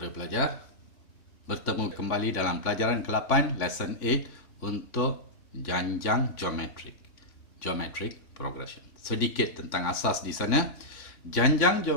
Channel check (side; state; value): right; late; 3.5 ms